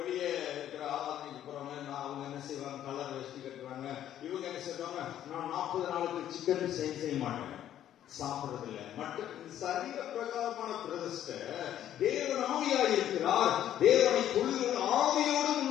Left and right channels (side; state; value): right; quieter; 11.3 dB